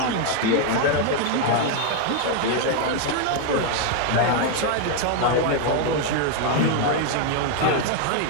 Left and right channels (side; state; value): both; different; correlation 0.00